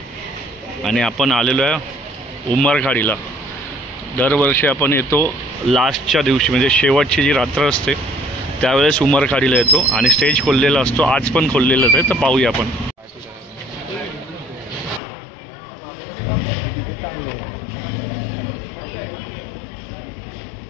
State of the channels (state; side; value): drops out; right; at 15.0 s